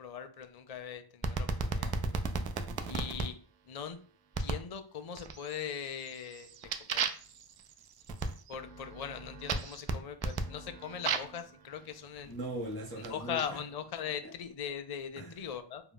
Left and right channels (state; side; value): late; right; 1.0 ms